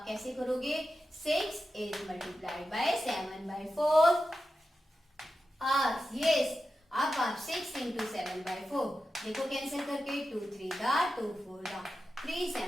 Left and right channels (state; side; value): normal; both; correlation 0.91